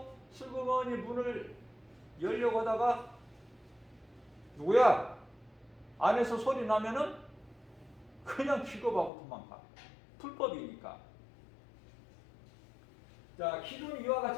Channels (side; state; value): right; drops out; at 9.1 s